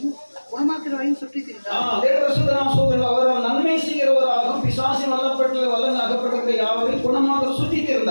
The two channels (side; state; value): both; inverted; correlation -1.00